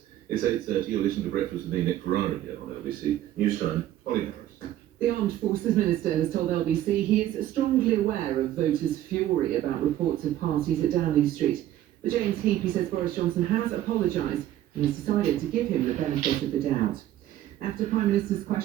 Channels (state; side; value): quieter; left; 13.0 dB